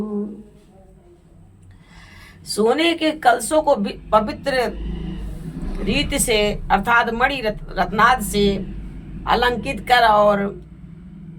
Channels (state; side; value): identical; both; correlation 1.00